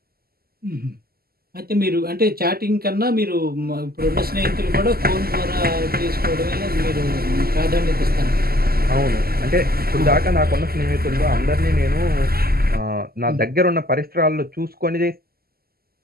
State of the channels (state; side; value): late; left; 0.45 ms